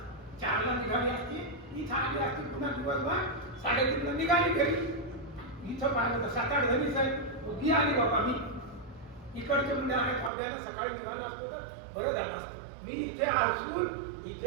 4ला निघाली असती, इथं आली असती, पुन्हा दिवसभर 3:30ला निघाली घरी. इथं पाहिलं तर 7-8 जणीच आहे. उभी आली बाबा मी. इकडचे म्हणजे आहे फावड्यानं सकाळी निघालं असतं तर बरं झालं असतं. मी इथे असून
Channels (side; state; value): left; drops out; at 10.3 s